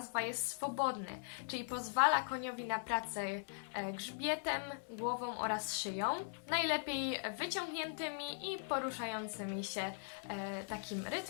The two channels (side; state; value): right; silent; digital silence